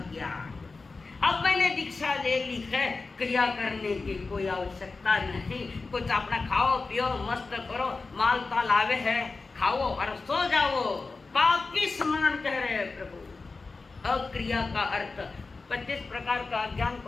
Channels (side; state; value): right; quieter; 3.9 dB